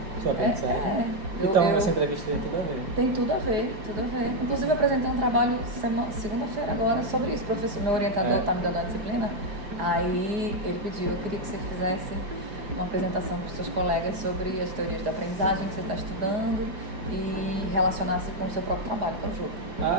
Sobre aprendizagem? Então, essa entrevista tem tudo a ver. Tem tudo a ver, tudo a ver. Inclusive, eu apresentei um trabalho segunda-feira agora sobre isso. Meu orientador está me dando a disciplina, aí ele pediu, eu queria que você fizesse uma apresentação para os seus colegas sobre as teorias da aprendizagem que você está estudando e relacionasse com o seu próprio trabalho, que é o jogo.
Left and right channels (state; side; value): late; left; 4.8 ms